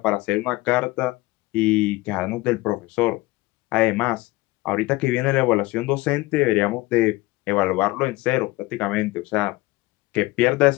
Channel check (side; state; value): right; quieter; 20.4 dB